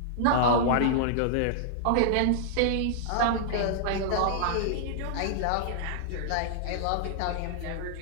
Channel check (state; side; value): different; both; correlation -0.01